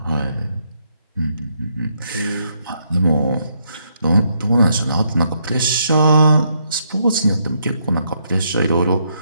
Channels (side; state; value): both; inverted; correlation -0.75